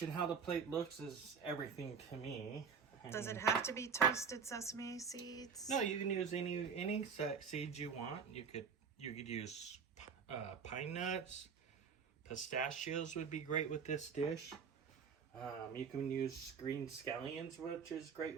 and how the plate looks is everything to me. Does it have to be toasted sesame seeds? No, you can use any seeds you want. You could use pine nuts, pistachios would be great with this dish. You can use green scallions, which is great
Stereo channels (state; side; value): quieter; left; 6.1 dB